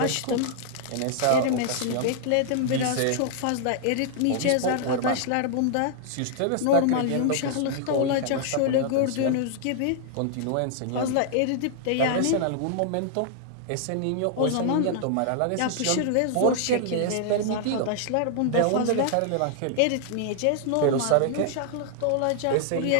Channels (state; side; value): different; both; correlation -0.01